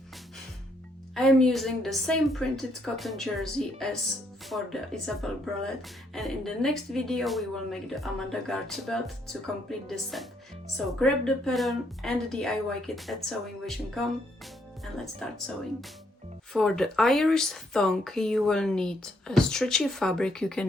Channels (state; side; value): normal; both; correlation 0.72